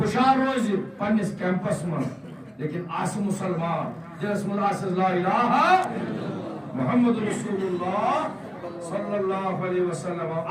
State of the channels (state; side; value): identical; both; correlation 1.00